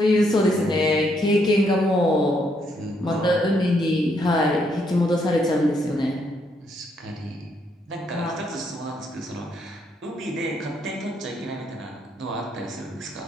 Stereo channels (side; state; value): both; normal; correlation 0.74